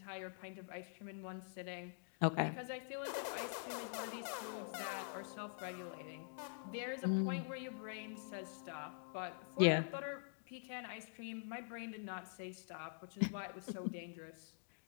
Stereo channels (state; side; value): silent; right; digital silence